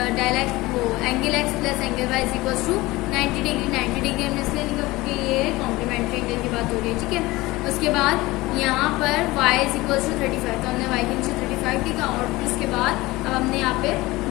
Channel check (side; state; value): right; quieter; 20.0 dB